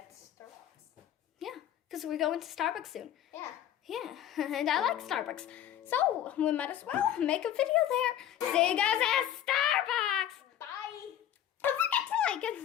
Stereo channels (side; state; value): right; quieter; 11.3 dB